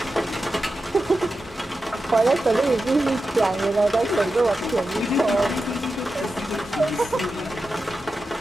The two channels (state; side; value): normal; both; correlation 0.91